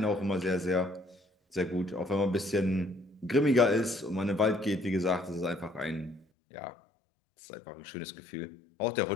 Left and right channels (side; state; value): right; drops out; at 6.2 s